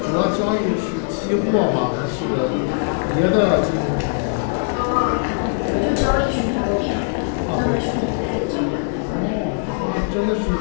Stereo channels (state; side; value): silent; right; 65 dB below the other